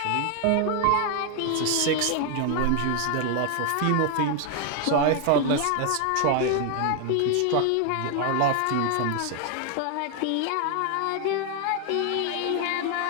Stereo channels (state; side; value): different; both; correlation 0.01